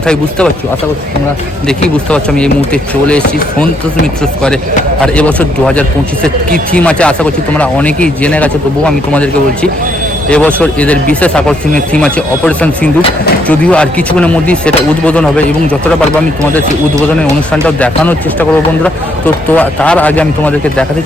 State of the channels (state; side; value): normal; both; correlation 0.72